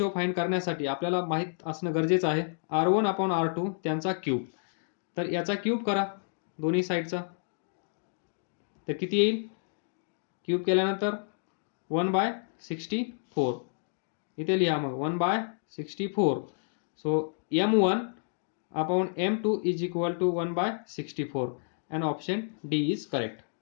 फाइंड करण्यासाठी आपल्याला माहित असणं गरजेचं आहे r1 अपॉन r2 त्यांचा क्यूब. तर याचा क्यूब करा दोन्ही साईडचा, तर किती येईल? क्यूब केल्यानंतर 1/64. इथे लिहा मग 1/64. So m1 upon m2 is equal to 1/64 and option D is correct.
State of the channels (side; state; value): right; silent; digital silence